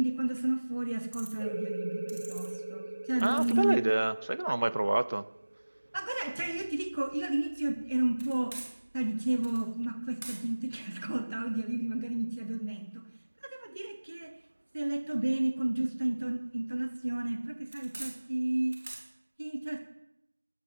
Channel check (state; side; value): inverted; both; correlation -1.00